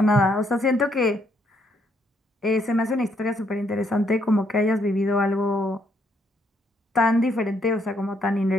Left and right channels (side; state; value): both; normal; correlation 0.72